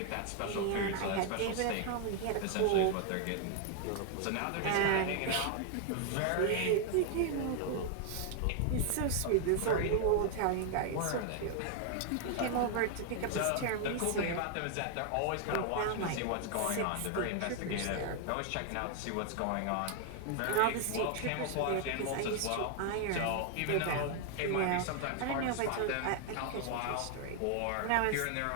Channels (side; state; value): both; different; correlation 0.00